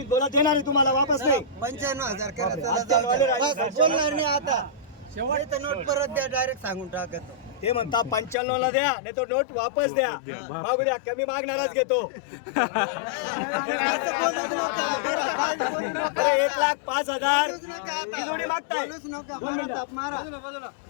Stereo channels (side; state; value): right; drops out; at 8.3 s